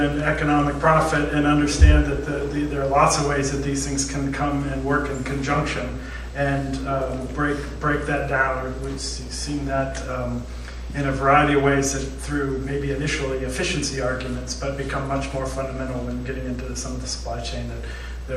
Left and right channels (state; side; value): identical; both; correlation 1.00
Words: economic profit, and understand that there are lots of ways that these things can come and work in conjunction, and break that down. We've seen that in a variety of ways, that through maybe initially efficiency arguments, but become much more fundamental when getting into some of the supply chain, that